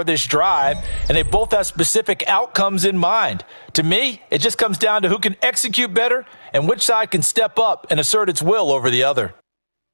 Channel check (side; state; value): both; inverted; correlation -1.00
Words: this drive, and they both have specific outcomes in mind. To me, it just comes down to who can execute better and which side can step up and assert its will over the other.